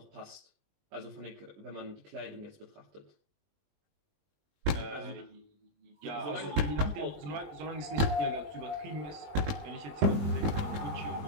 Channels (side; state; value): left; late; 20 ms